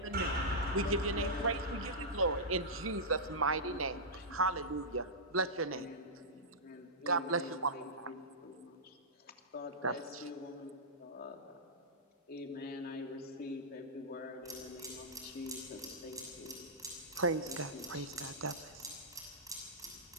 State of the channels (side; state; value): both; normal; correlation -0.12